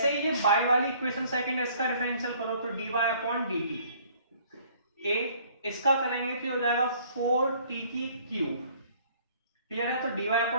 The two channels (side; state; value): both; inverted; correlation -0.58